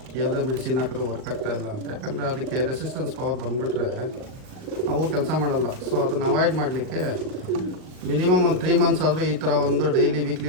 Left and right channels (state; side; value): late; left; 38 ms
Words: ಯಾವುದೋ ಮೆಡಿಸಿನ್ ಹಾಕಿದ್ರೆ ವರ್ಕ್ ಆಗ್ತಾಯಿಲ್ಲ ಅಂತ. ಯಾಕಂದರೆ ಅದಕ್ಕೆ ರೆಸಿಸ್ಟೆನ್ಸ್ ಪವರ್ ಬಂದುಬಿಟ್ರೆ ಅವು ಕೆಲಸ ಮಾಡಲ್ಲ. ಸೊ ಅದನ್ನು ಅವಾಯ್ಡ್ ಮಾಡಲಿಕ್ಕೆ ಮಿನಿಮಮ್ ಒಂದು 3 ಮಂತ್ಸ್ ಆದರೂ ಈ ಥರ ಒಂದು ಡೈಲಿ